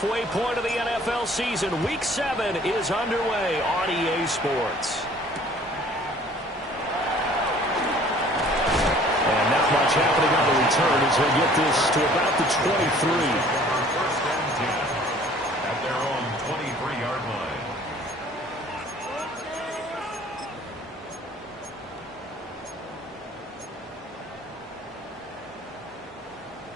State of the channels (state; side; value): normal; both; correlation 0.53